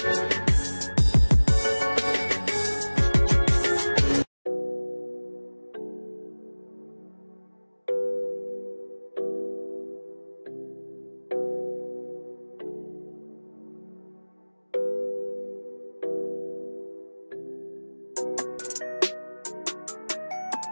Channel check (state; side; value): inverted; both; correlation -1.00